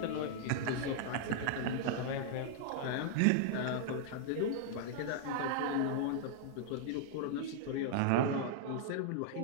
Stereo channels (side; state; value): both; different; correlation -0.01